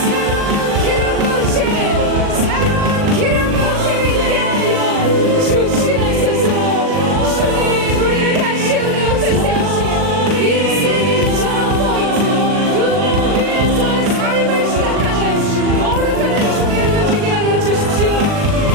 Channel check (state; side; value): late; left; 40 ms